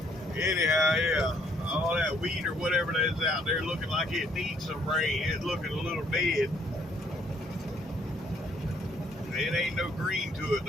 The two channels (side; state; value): both; normal; correlation 0.65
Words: Anyhow, yeah, all that wheat or whatever that's out there looking like it needs some rain. It's looking a little dead. It ain't no green to it